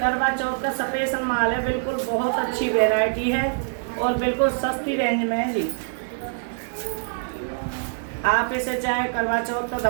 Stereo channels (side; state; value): left; silent; 62 dB below the other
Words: चौथ का स्पेशल माल है। बिल्कुल बहुत अच्छी वेराइटी है और बिल्कुल सस्ती रेंज में है जी। आप इसे चाहे करवा चौथ का